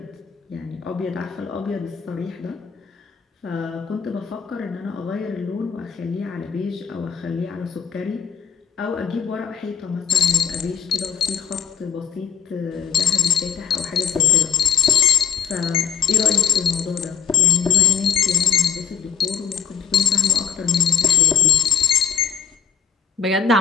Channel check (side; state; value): right; quieter; 7.6 dB